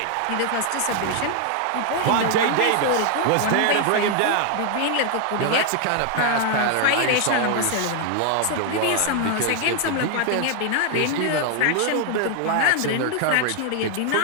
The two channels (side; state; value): both; different; correlation 0.00